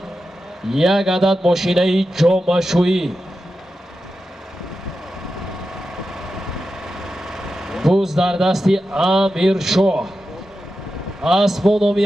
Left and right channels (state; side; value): normal; both; correlation 0.91